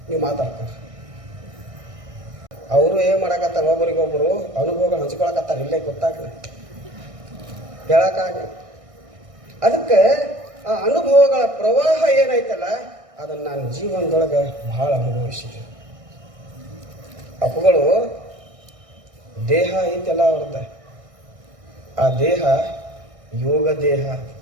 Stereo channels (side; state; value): left; late; 1.6 ms